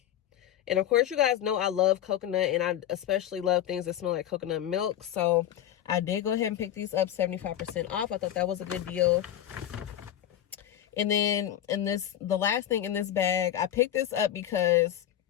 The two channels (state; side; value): quieter; right; 11.4 dB